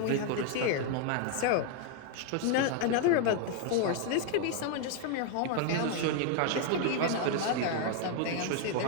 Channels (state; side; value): different; both; correlation 0.00